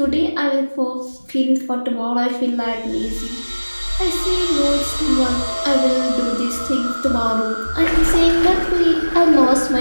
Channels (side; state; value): both; inverted; correlation -1.00